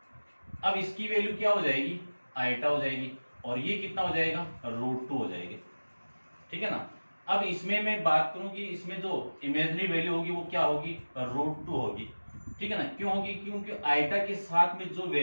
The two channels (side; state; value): both; inverted; correlation -1.00